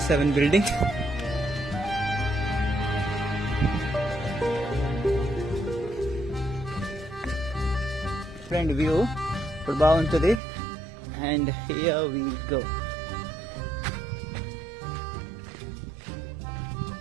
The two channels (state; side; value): drops out; left; at 10.4 s